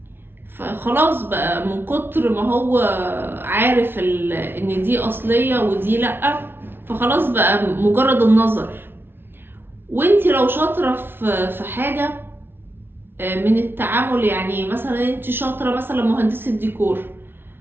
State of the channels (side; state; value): left; late; 0.11 ms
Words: فخلاص بقى من كتر ما هو عارف ان دي اصلية ودي لأ، فخلاص بقى مجرد النظر. وانتي لو شاطرة في حاجة من التعامل، يعني مثلا انت شاطرة مثلا مهندسة ديكور،